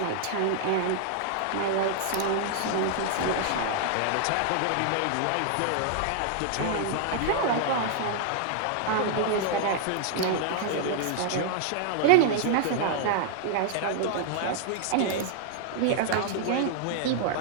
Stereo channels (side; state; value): both; different; correlation -0.01